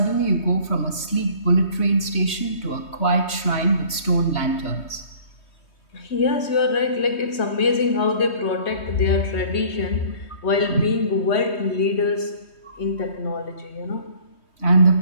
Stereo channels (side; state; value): right; late; 3.2 ms